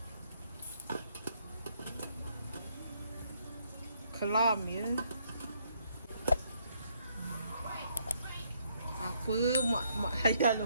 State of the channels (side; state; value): both; inverted; correlation -0.71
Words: Kelam ya. Apa mak layan